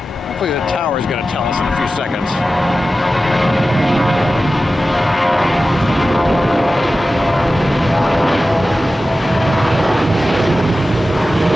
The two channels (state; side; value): normal; both; correlation 0.94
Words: the tower is going to tell us in a few seconds.